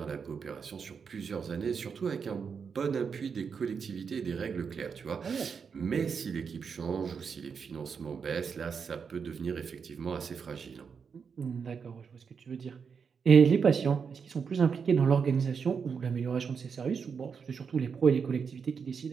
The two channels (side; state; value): left; quieter; 6.1 dB